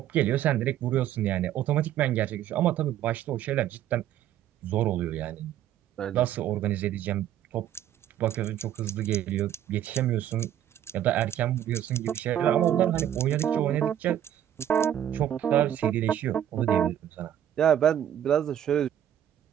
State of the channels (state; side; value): quieter; left; 11.0 dB